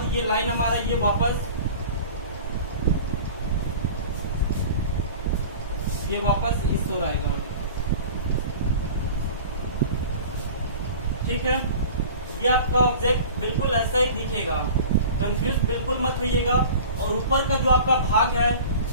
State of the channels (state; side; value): inverted; both; correlation -0.39